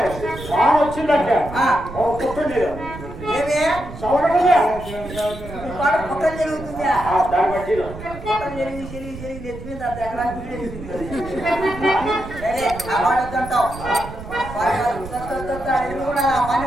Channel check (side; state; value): right; noise; rumble, 12 dB below the sound